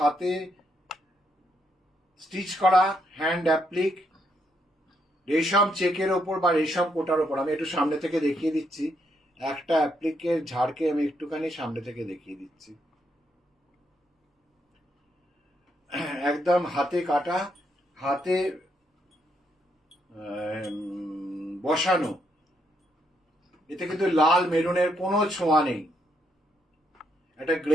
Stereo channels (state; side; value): normal; both; correlation 0.76